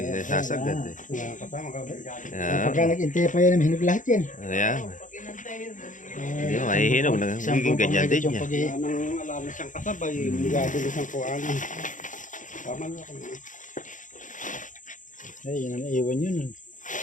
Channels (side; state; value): right; late; 0.37 ms